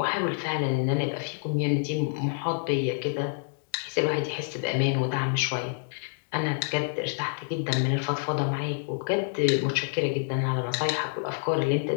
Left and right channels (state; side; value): silent; right; digital silence